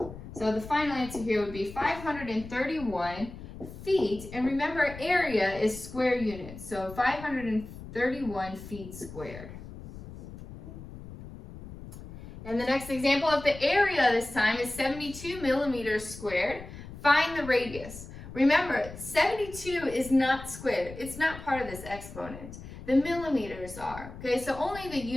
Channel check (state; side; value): noise; left; rumble, 13 dB below the sound